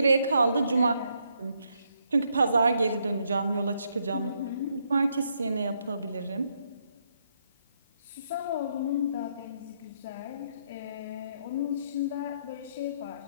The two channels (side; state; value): both; inverted; correlation -0.75